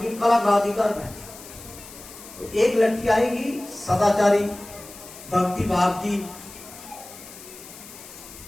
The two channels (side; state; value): left; noise; hiss, 17 dB below the sound